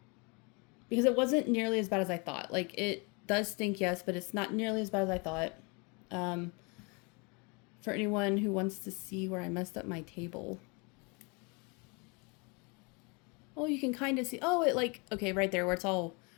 it wasn't nearly as bad as I thought. Like, it does stink, yes, but it's not nearly as bad as I thought. For anyone who wants to see where I messed up my table. Oh, you can kind of see. Oh, it like, okay, right there where it's all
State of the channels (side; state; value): right; quieter; 31.0 dB